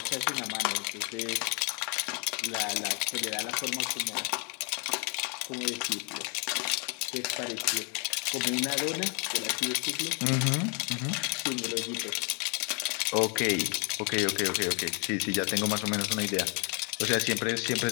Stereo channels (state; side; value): quieter; right; 35.9 dB